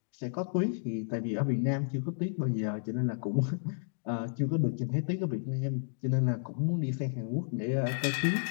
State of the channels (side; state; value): right; silent; digital silence